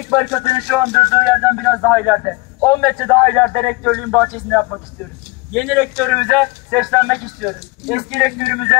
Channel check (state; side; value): quieter; right; 25.0 dB